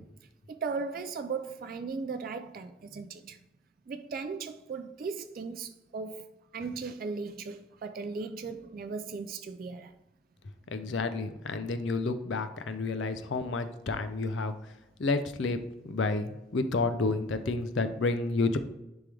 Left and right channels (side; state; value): both; normal; correlation 0.39